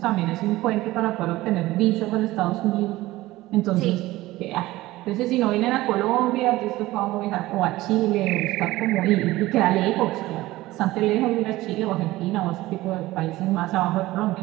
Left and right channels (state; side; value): quieter; left; 17.8 dB